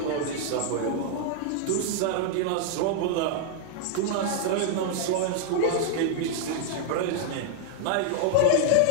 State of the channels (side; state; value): both; different; correlation -0.01